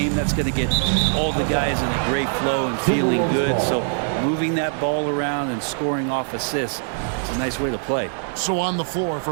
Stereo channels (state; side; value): silent; left; 57 dB below the other